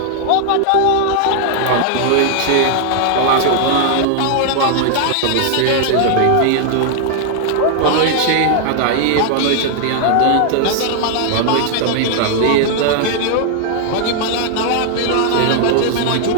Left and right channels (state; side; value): different; both; correlation 0.00